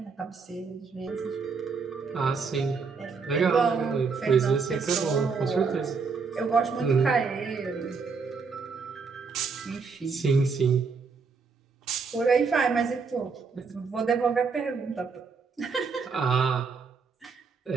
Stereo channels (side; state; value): left; quieter; 5.0 dB